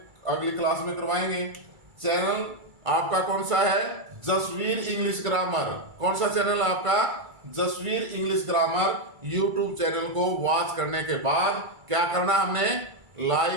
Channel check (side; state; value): left; late; 2.3 ms